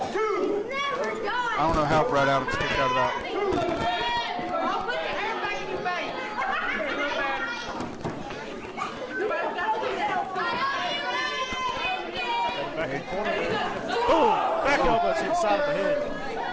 I don't know how Brad Adams kicked out of that. Boom! Back elbow to the side of the head.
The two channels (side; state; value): both; identical; correlation 1.00